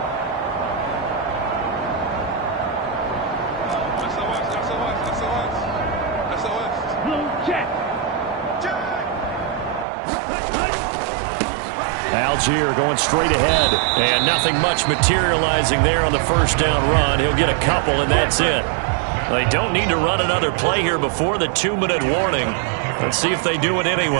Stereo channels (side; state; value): left; drops out; at 9.9 s